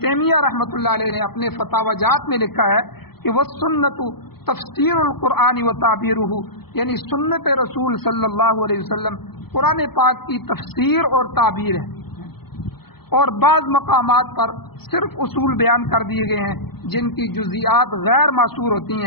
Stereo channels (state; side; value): late; right; 0.96 ms